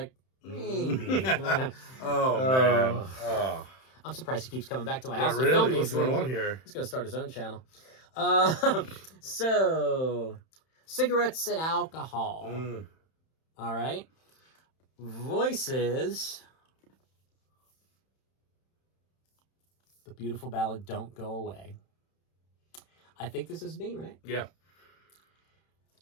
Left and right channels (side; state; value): right; late; 31 ms